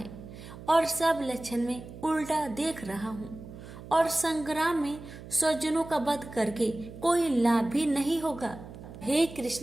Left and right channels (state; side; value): noise; right; hum, 15 dB below the sound